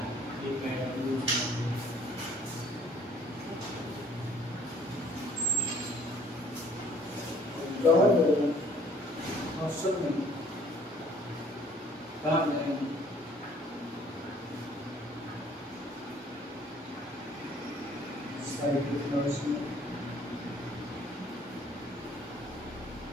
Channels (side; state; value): both; normal; correlation 0.58